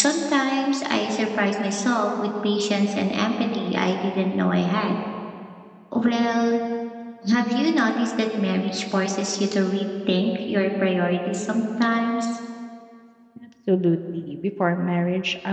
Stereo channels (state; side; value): identical; both; correlation 1.00